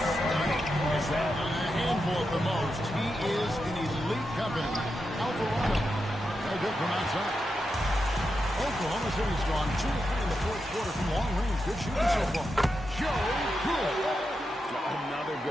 stunning as that. A handful at the most. He is in elite company. Alvarado. No good from outside. Oklahoma City's gone 2 of 3 in the fourth quarter from long range. Good shooting so far. Joe Cool. Another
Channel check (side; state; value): both; normal; correlation 0.87